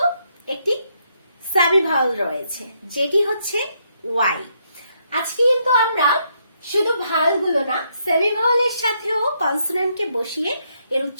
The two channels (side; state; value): both; inverted; correlation -0.75